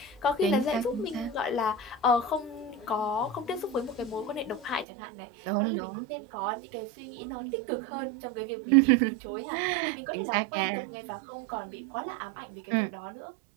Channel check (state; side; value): drops out; left; at 4.9 s